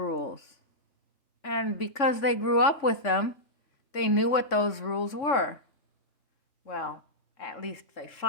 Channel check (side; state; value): right; late; 3.5 ms